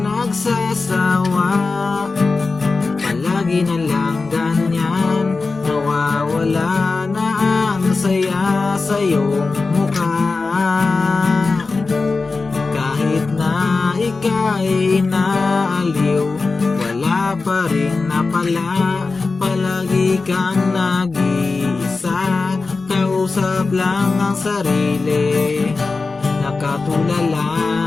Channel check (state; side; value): quieter; right; 4.0 dB